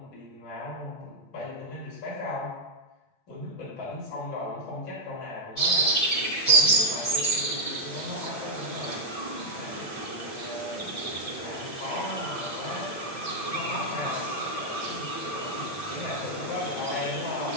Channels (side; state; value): right; late; 8.6 ms